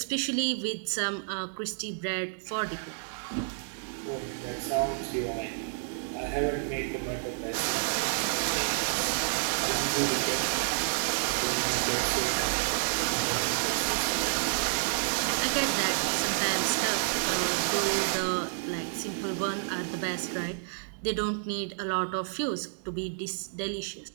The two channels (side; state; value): left; silent; digital silence